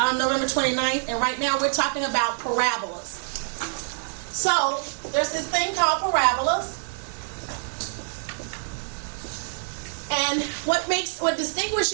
29th, and right now we're talking about parabolas. So, there's this thing called parabolas. And what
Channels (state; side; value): silent; left; digital silence